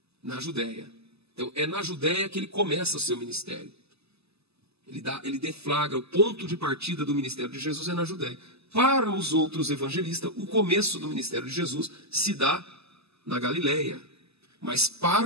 Na Judéia. Então, é na Judéia que ele começa o seu ministério. Ele deflagra o ponto de partida do ministério de Jesus é na Judéia. Para os outros evangelistas, o começo do ministério de Jesus se dá na Galileia. Mas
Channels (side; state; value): left; late; 0.79 ms